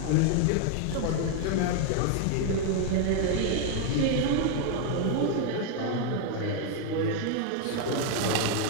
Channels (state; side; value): different; both; correlation 0.00